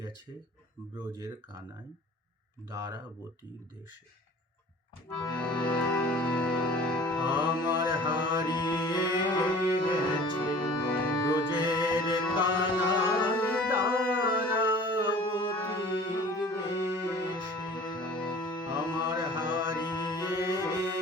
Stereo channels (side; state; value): both; normal; correlation 0.45